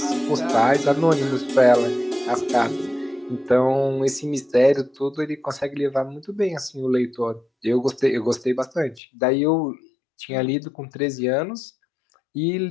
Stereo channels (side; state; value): right; drops out; at 9.0 s